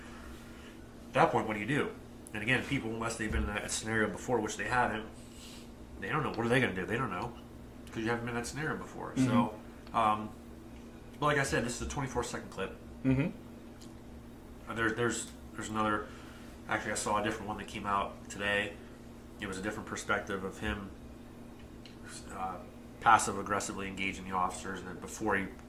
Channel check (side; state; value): both; identical; correlation 1.00